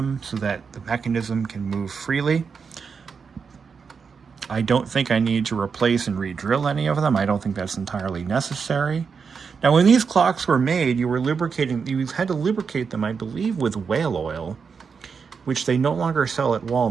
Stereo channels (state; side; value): quieter; left; 5.7 dB